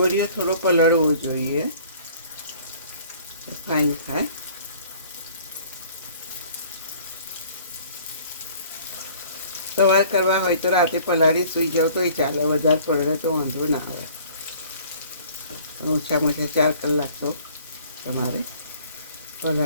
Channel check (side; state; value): both; inverted; correlation -0.53